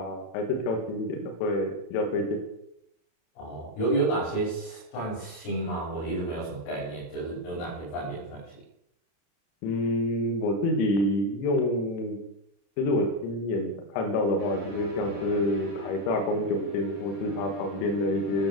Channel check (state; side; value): late; right; 34 ms